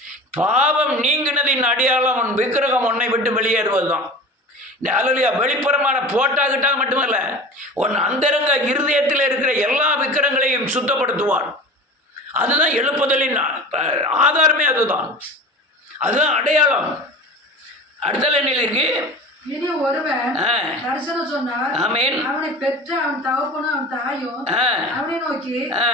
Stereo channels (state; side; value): normal; both; correlation 0.34